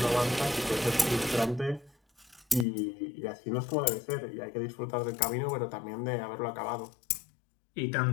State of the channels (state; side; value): drops out; right; at 2.7 s